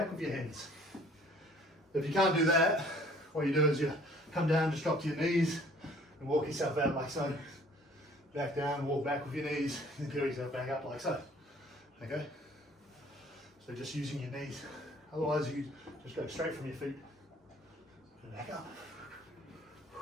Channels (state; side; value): normal; both; correlation 0.55